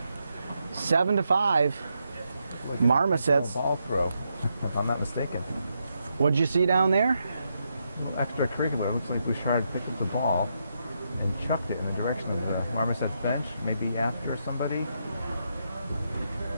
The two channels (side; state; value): both; inverted; correlation -0.81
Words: 7-5, Marmosets. Ball throw, if I'm not mistaken. What'd you see down there? Extracurricular. Looks like Bouchard picked up the ball and chucked it in the direction of the Marmosets bench, maybe after somebody.